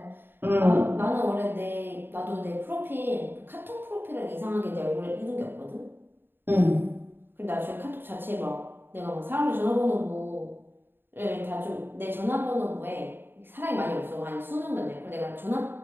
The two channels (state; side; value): late; left; 0.099 ms